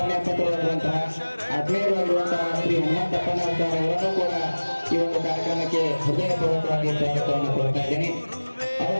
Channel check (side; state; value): both; inverted; correlation -1.00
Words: ಆತ್ಮೀಯರಾಗಿರುವಂತಹ ಶ್ರೀ ಹನುಮಂತಪ್ಪನವರ ಅವರನ್ನು ಕೂಡ ಈ ಒಂದು ಕಾರ್ಯಕ್ರಮಕ್ಕೆ ಹೃದಯಪೂರ್ವಕವಾಗಿ ಸ್ವಾಗತವನ್ನು ಕೋರ್ತಾ ಇದ್ದೇನೆ.